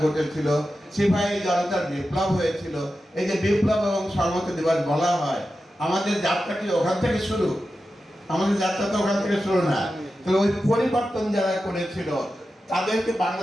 ঘটেছিল, সিপাহী জনতার বিপ্লব হয়েছিল। এই যে বিপ্লব এবং সংহতি দিবস বলা হয়, আমাদের যাত্রা কি ওখান থেকে শুরু? আমাদের যাত্রা তো ওখান থেকে শুরু না। তো ওই পরিবর্তন যারা করেছিল তাদেরকে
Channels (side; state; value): both; normal; correlation 0.92